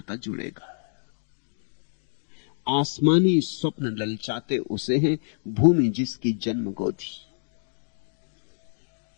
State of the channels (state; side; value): silent; right; digital silence